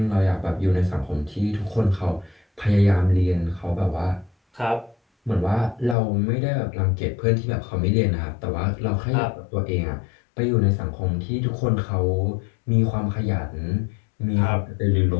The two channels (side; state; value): right; drops out; at 6.0 s